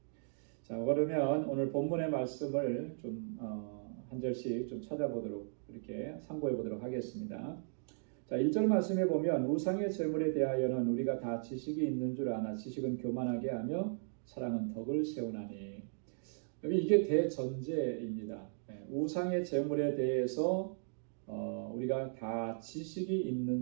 자, 그러면 오늘 본문의 말씀을 좀 한 절씩 좀 찾아보도록 이렇게 참고해 보도록 하겠습니다. 자, 1절 말씀에 보면 우상의 제물에 대하여는 우리가 다 지식이 있는 줄 아나 지식은 교만하게 하며 사랑은 덕을 세우나니. 여기 이게 대전제입니다. 우상의 제물에 대해서 우리가 다 지식이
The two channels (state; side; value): silent; left; digital silence